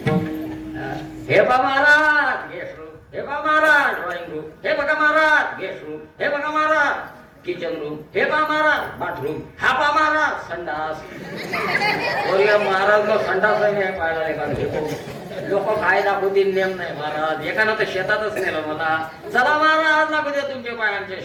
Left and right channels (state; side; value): identical; both; correlation 1.00